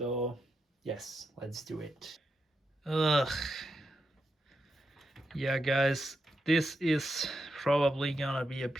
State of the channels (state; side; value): normal; both; correlation 0.85